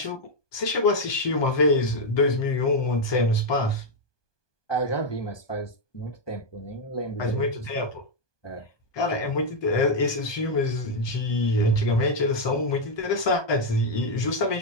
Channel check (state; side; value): late; right; 1.2 ms